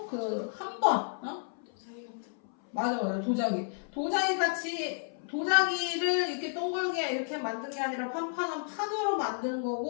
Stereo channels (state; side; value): silent; right; 57 dB below the other